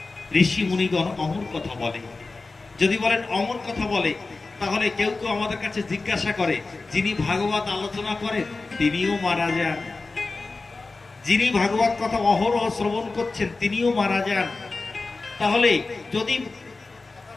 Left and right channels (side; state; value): right; quieter; 3.7 dB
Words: ঋষি মুনিগণ অমর কথা বলে। যদি বলেন অমর কথা বলে, তাহলে কেউ কেউ আমাদের কাছে জিজ্ঞাসা করে, যিনি ভাগবত আলোচনা করেন তিনিও মারা যান, যিনি ভাগবত কথা অহরহ শ্রবণ করছেন তিনিও মারা যান, তাহলে যদি